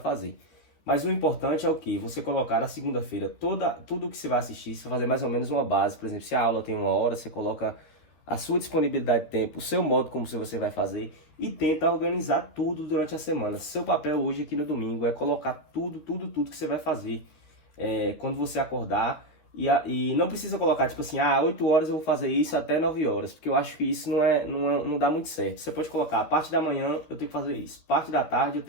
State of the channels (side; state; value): right; late; 13 ms